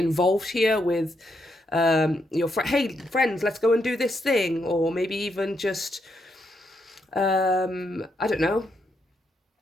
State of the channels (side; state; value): both; normal; correlation 0.79